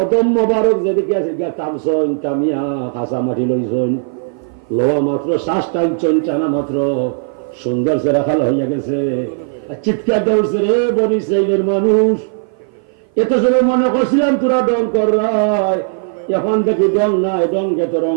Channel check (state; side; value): silent; left; 55 dB below the other